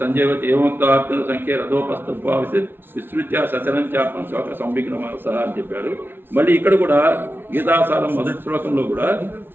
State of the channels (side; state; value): left; late; 0.10 ms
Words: సంజయవతి ఏమంత సంఖ్య రథోపస్థ విస్తృత్య సచరంచాత్మ శోక సంవిఘ్నమాస అని చెప్పాడు. మళ్ళీ ఇక్కడ కూడా గీతాసారం మొదటి శ్లోకంలో కూడా